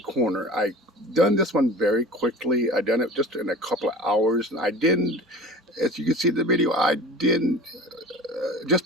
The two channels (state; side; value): normal; both; correlation 0.37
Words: I done this one very quickly. I done it just in a couple of hours, and I didn't, as you can see in the video, I didn't just